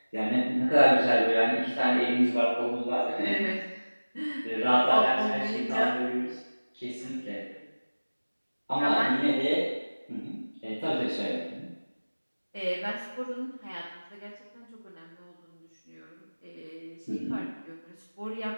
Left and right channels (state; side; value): inverted; both; correlation -1.00